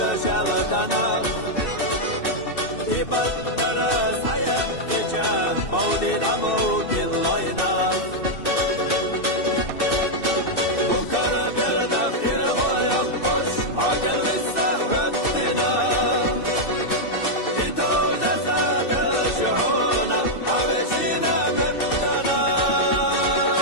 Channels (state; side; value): late; right; 2.6 ms